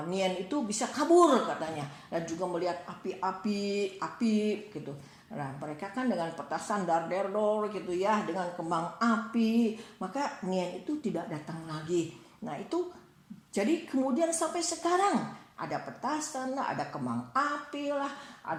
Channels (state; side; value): identical; both; correlation 1.00